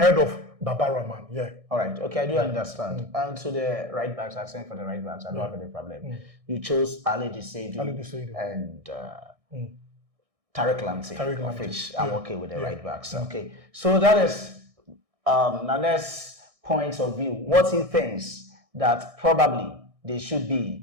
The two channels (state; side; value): late; left; 1.6 ms